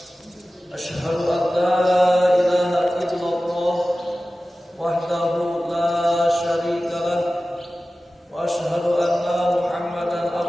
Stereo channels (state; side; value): normal; both; correlation 0.96